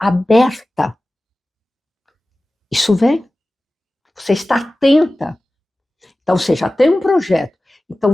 isso vem. Você está atenta. Então, você já tem um projeto.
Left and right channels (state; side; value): normal; both; correlation 0.96